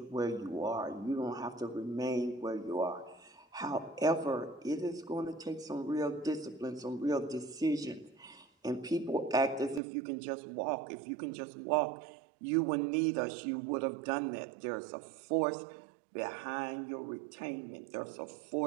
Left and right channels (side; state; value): left; drops out; at 9.8 s